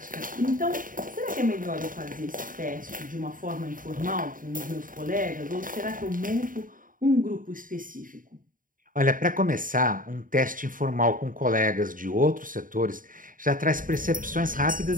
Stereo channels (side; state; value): left; late; 0.39 ms